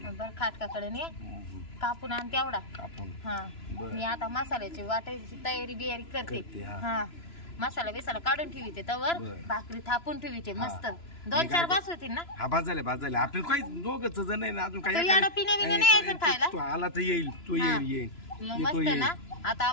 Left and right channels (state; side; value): late; right; 3.0 ms